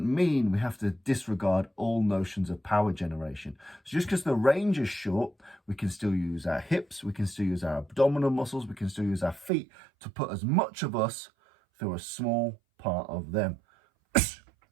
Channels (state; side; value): drops out; left; at 9.5 s